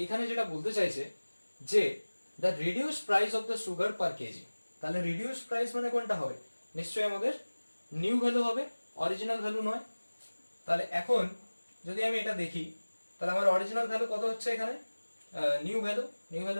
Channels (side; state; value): both; inverted; correlation -1.00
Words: এখানে যেটা বলতে চাইছে যে the reduced price of the sugar per KG, তাহলে রিডিউসড প্রাইস মানে কোনটা হবে, নিশ্চয়ই আমাদের নিউ ভ্যালু হবে, অরিজিনাল ভ্যালু নয়। তাহলে এখন যদি আমি এটা দেখি, তাহলে আমার অরিজিনাল ভ্যালু কত হচ্ছে এখানে, নিউ ভ্যালু